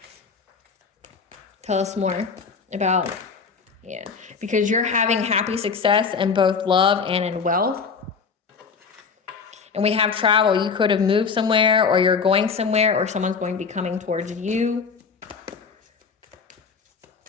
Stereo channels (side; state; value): right; quieter; 5.5 dB